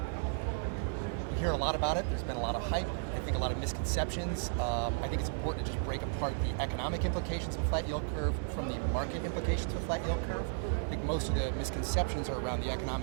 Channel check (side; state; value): left; silent; digital silence